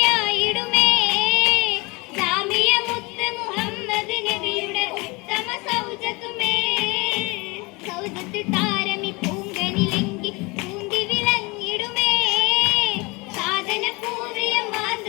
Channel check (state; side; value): quieter; right; 25.8 dB